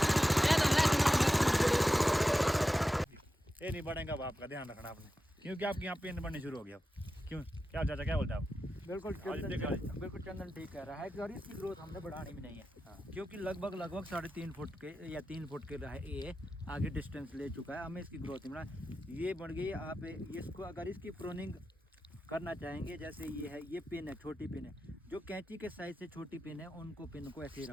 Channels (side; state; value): both; normal; correlation 0.92